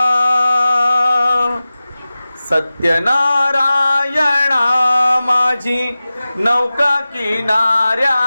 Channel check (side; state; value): both; inverted; correlation -0.96